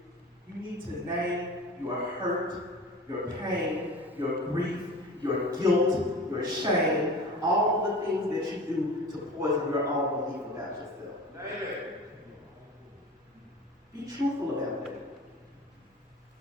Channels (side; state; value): both; normal; correlation 0.37